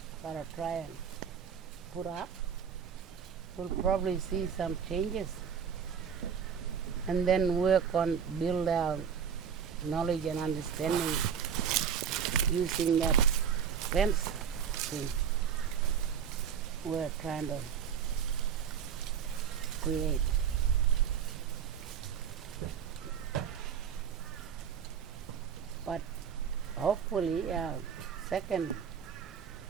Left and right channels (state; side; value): quieter; left; 7.6 dB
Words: gotta try and put up, we'll probably see some changes and then work on build our knowledge and understanding using that fence thing we're trying to create. But hopefully second